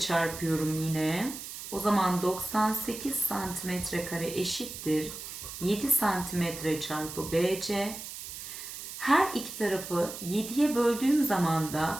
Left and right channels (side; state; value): right; noise; hiss, 10 dB below the sound